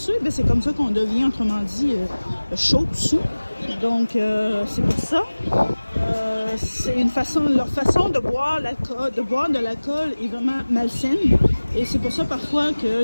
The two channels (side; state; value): both; inverted; correlation -1.00